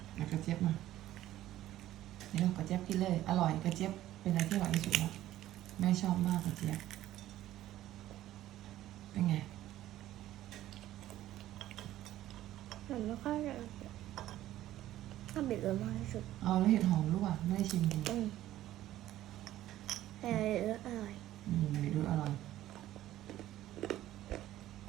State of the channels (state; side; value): quieter; left; 13.9 dB